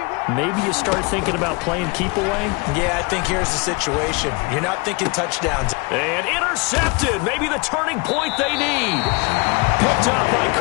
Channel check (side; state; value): right; quieter; 27.9 dB